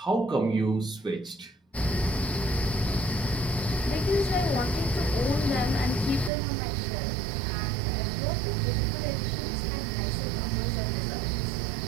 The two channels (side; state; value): left; drops out; at 6.3 s